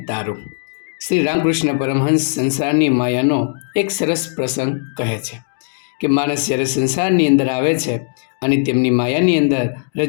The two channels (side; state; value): right; silent; digital silence